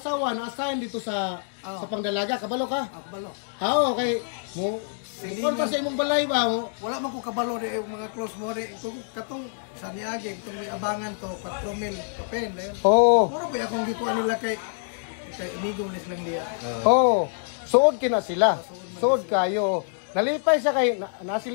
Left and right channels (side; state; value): right; silent; digital silence